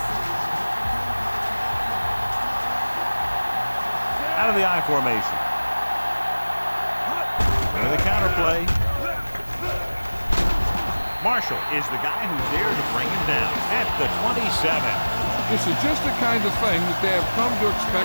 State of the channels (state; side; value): inverted; both; correlation -1.00